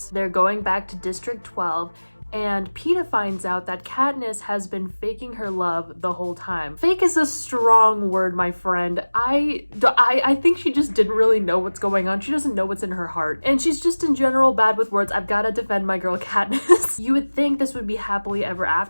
They're going back to District 12, and Peta finds out that Katniss has been faking her love the whole time. Fake is a strong word, my friend. I think she just didn't really know what's going on. She doesn't know what's in her heart. And she's just in general bad with words. I've gotta defend my girl Katniss. You would think this would be happily ever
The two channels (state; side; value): inverted; both; correlation -1.00